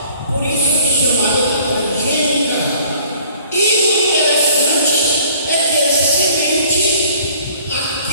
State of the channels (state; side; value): inverted; both; correlation -0.53